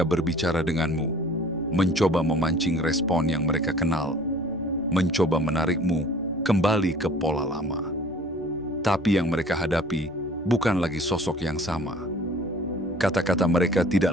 berbicara denganmu, mencoba memancing respon yang mereka kenal, mencoba menarikmu kembali ke pola lama. Tapi yang mereka hadapi bukan lagi sosok yang sama. Kata-kata mereka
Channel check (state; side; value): noise; left; rumble, 26 dB below the sound